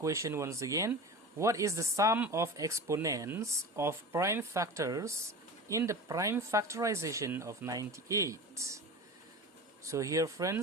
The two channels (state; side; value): normal; both; correlation 0.32